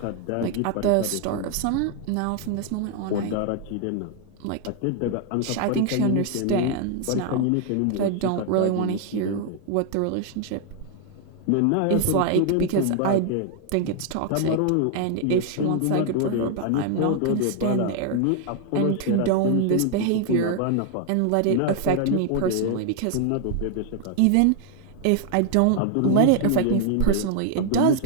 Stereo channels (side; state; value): both; different; correlation 0.00